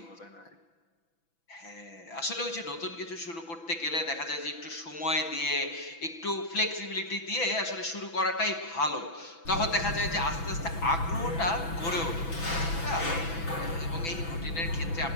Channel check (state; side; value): late; right; 6.0 ms